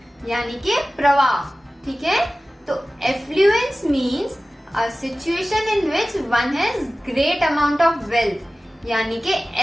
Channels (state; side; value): normal; both; correlation 0.97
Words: यानी कि प्रवाह। ठीक है? तो affluence means a situation in which one has great amount of wealth, यानी कि